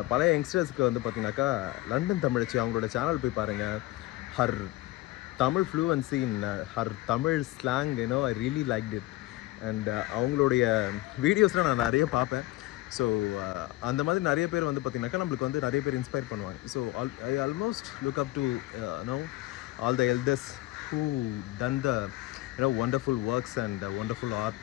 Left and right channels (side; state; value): right; quieter; 18.1 dB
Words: பல யங்ஸ்டர்ஸ்க்கு வந்து பார்த்திங்கனாக்கா லண்டன் தமிழச்சி அவங்களோட சேனல் போய் பாருங்கள். Her Tamil fluency in her Tamil slang I really liked it. And அவங்களுடைய வீடியோஸ்லாம் நான் நிறைய பார்ப்பேன். ஸோ அந்த மாதிரி நிறைய பேர் வந்து பார்த்தீங்கன்னாக்கா நம்மளுக்கு வந்து நிறைய பேர் இன்ஸ்பயர் பண்ணுவாங்க. So I almost look up to all the elders who done the wonderful works and wonderful